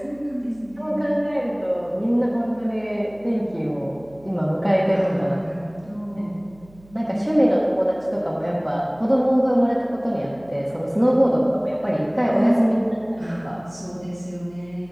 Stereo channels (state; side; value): noise; right; hum, 25 dB below the sound